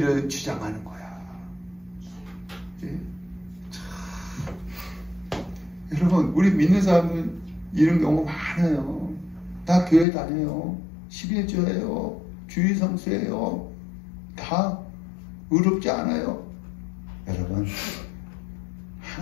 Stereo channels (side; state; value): right; drops out; at 10.1 s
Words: 주장하는 거야. 예? 여러분, 우리 믿는 사람은 이런 경우 많아요. 다 교회 다녀요. 11조예요. 주일 성수예요. 다 의롭지 않아요. 여러분,